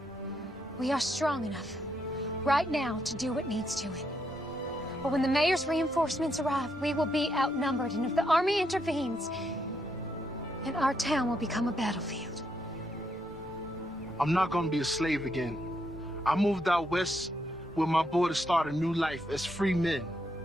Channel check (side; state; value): both; normal; correlation 0.78